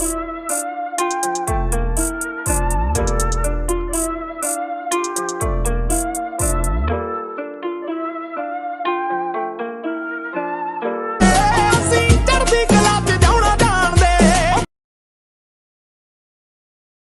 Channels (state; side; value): identical; both; correlation 1.00